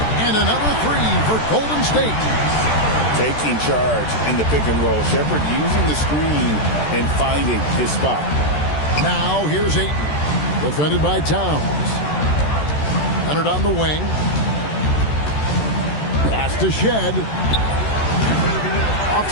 And another three for Golden State. Taking charge in the pick and roll. Shepherd using the screen and finding his spot. Now here's Ayton. Defended by Towns. Leonard on the wing. Pass to Shed. Off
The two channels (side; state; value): right; late; 13 ms